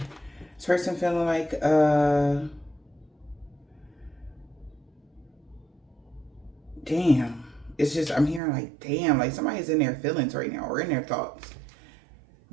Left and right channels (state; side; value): drops out; left; at 8.4 s